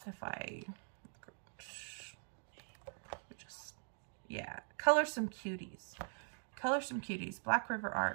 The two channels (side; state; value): left; silent; digital silence